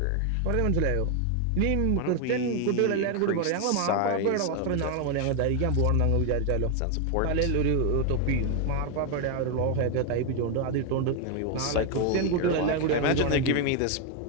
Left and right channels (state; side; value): different; both; correlation 0.01